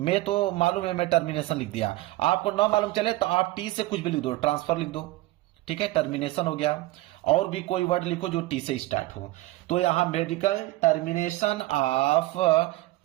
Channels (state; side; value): quieter; left; 18.7 dB